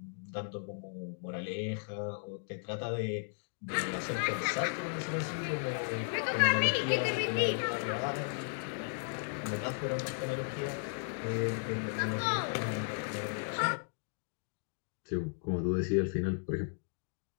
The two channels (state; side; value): silent; right; digital silence